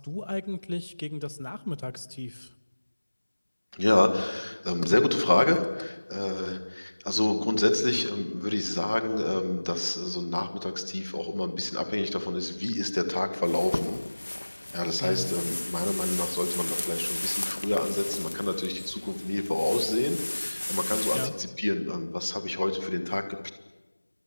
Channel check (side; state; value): both; inverted; correlation -1.00